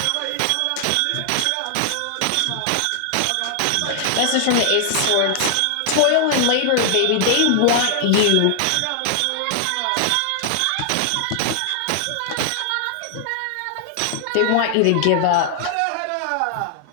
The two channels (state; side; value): different; both; correlation 0.00